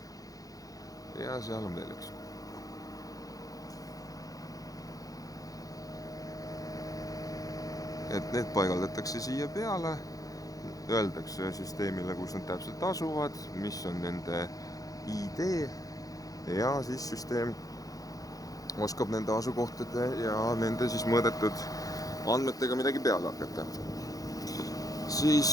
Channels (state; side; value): late; right; 0.17 ms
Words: ja seal on veel üks. Et need paigaldatakse siia peale, öeldakse süsteemile, kus nad täpselt asuvad, mis on nende ID ja siis süsteem oskab nende asukohtade ja nende siis mõõdetud andmetega midagi peale hakata.